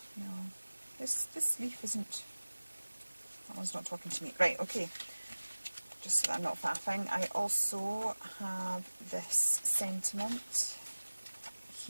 No, this leaf isn't. That one's not talking to me. Right. Okay. Just so that I'm not faffing. I also have this sentiment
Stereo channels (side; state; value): both; inverted; correlation -1.00